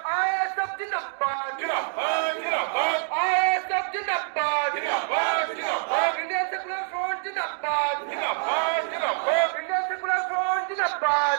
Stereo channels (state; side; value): silent; left; digital silence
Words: ISF জিন্দাবাদ, ISF জিন্দাবাদ, ইন্ডিয়ান সেকুলার ফ্রন্ট জিন্দাবাদ, ইন্ডিয়ান সেকুলার ফ্রন্ট জিন্দাবাদ,